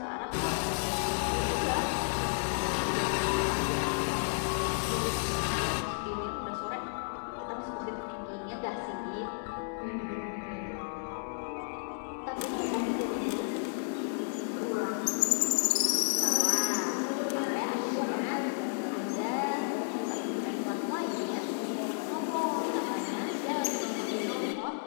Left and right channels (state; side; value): silent; right; 56 dB below the other